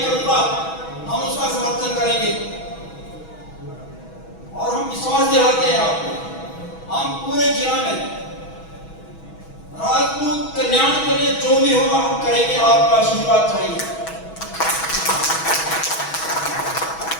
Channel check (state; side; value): late; right; 6.2 ms